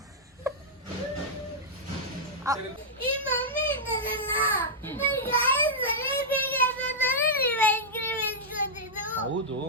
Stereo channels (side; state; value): both; normal; correlation -0.08